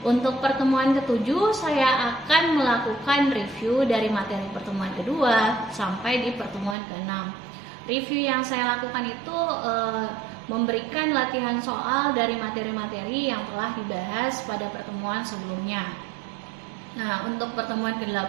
Untuk pertemuan ke-7 saya akan melakukan review dari materi pertemuan kedua sampai di pertemuan ke-6. Review yang saya lakukan itu memberikan latihan soal dari materi-materi yang telah dibahas pada pertemuan sebelumnya. Nah, untuk pertemuan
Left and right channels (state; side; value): drops out; left; at 6.8 s